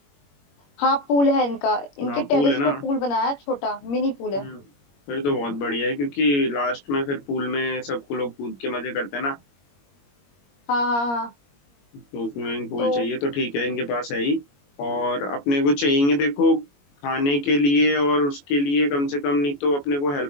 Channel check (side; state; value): right; late; 21 ms